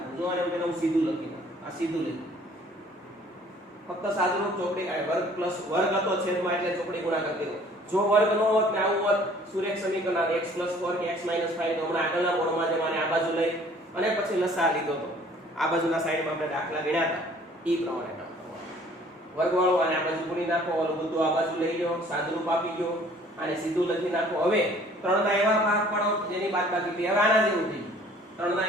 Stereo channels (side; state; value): both; normal; correlation 0.55